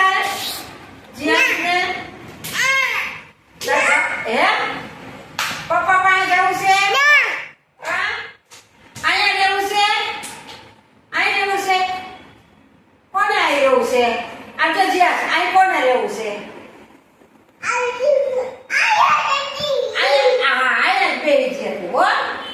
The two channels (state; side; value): identical; both; correlation 1.00